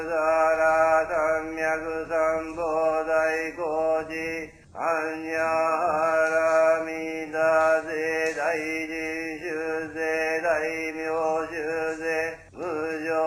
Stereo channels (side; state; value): both; identical; correlation 1.00